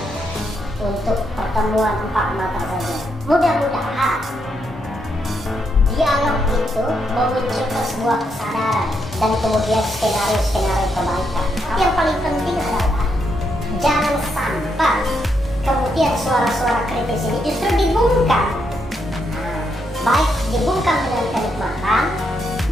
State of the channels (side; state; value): both; normal; correlation 0.79